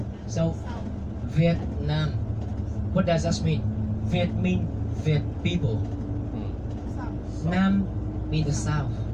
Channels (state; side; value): identical; both; correlation 1.00